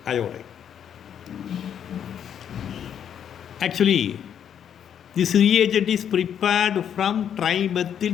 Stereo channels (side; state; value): right; quieter; 8.8 dB